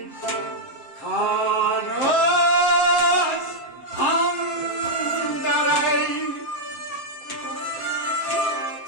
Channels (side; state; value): right; late; 7.6 ms